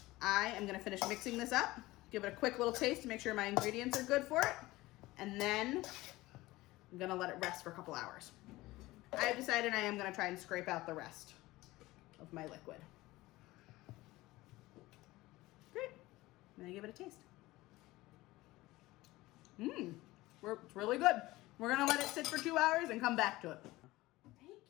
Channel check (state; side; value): quieter; right; 18.9 dB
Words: I am gonna finish mixing this up, give it a quick little taste to make sure my ingredients are good for it, and then I'm gonna let it rest for a couple hours. I have decided I am gonna try and scrape out the rest of my liquid. Great, I'm gonna give it a taste. It's really good. We're gonna let it sit for 2 hours and come back to it.